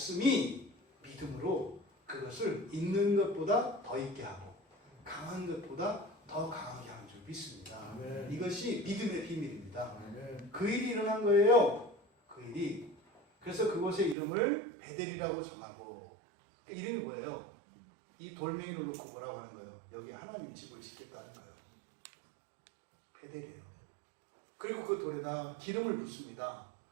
믿음으로 그것을 있는 것보다 더 있게 하고 강한 것보다 더 강하게 하는 줄 믿습니다. 아멘. 이것이 믿음의 비밀입니다. 아멘. 그 일이 일어난 거예요. 그 일이. 그래서 그곳의 이름을 베델이라고 정하고, 그 이름이 뭐예요? 이 돌멩이를 놓고 뭐라고 하는 거예요? 여기 하나님 집을 짓겠다는 거예요. 베델이에요. 그리고 그 돌에다 기름을 붓습니다.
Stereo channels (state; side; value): drops out; left; at 14.2 s